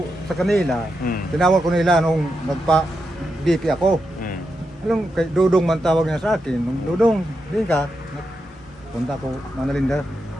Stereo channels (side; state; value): both; normal; correlation 0.86